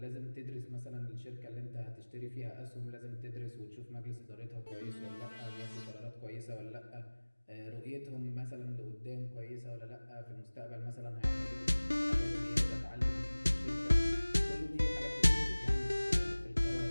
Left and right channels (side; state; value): both; inverted; correlation -1.00